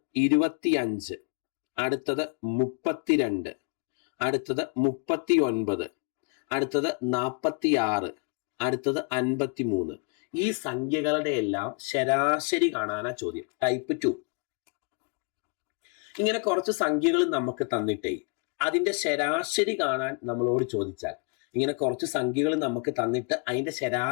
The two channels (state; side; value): quieter; right; 37.6 dB